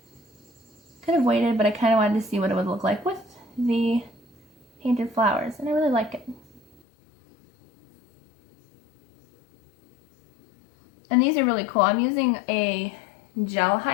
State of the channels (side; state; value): right; drops out; at 6.8 s